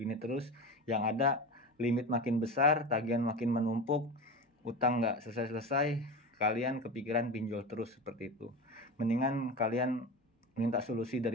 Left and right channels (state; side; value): normal; both; correlation 0.25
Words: terus, yang ada limit makin besar, tagihan makin menumpuk, utang nggak selesai-selesai, kalian kepikiran pinjol terus seperti itu. Mendingan kalian minta solusi